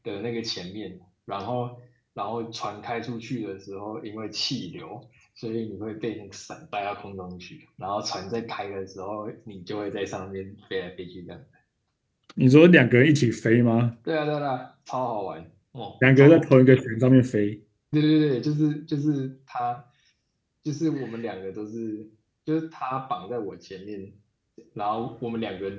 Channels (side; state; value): both; identical; correlation 1.00